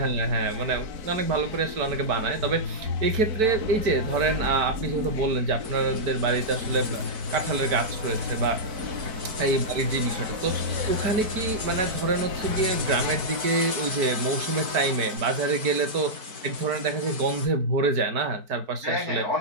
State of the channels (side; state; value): left; late; 4.5 ms